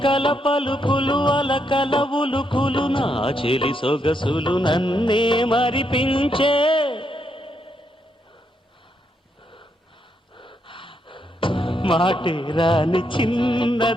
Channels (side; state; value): both; normal; correlation 0.78